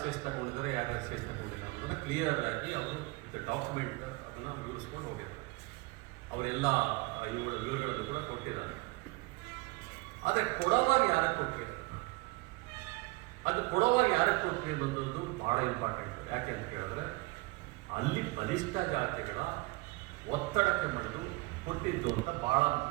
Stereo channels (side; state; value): left; quieter; 24.0 dB